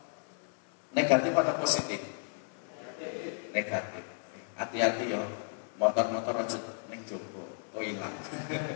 negatif atau positif? Negatif. Hati-hati ya. Motor-motor aja ning jowo, hilang.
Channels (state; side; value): silent; right; 55 dB below the other